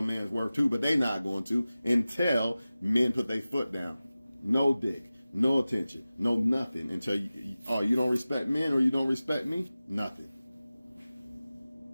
man's worth too, but they not going to until men put their foot down. No dick, no attention, no nothing until you don't respect men or you don't respect me? Nothing.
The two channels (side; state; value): both; inverted; correlation -0.96